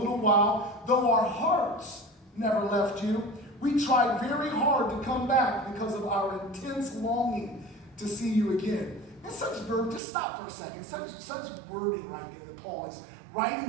while, though our hearts never left you, we tried very hard to come back because of our intense longing to see you again. And such verb, just stop for a second, such wording right there that Paul is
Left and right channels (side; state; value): left; drops out; at 10.0 s